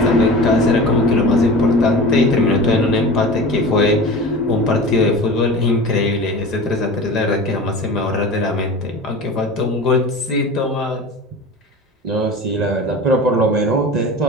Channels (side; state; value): both; normal; correlation 0.34